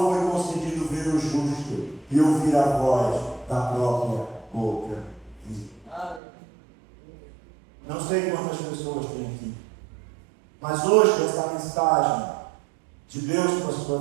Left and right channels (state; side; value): drops out; left; at 6.2 s